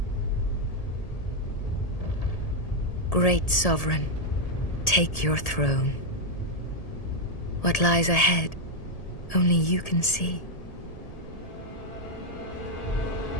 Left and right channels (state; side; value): late; right; 1.8 ms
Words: Great Sovereign, take your throne. What lies ahead, only you can see.